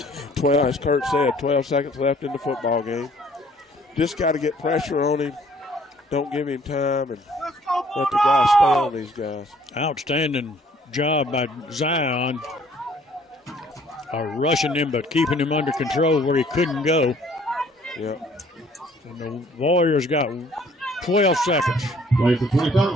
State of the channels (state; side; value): normal; both; correlation 0.58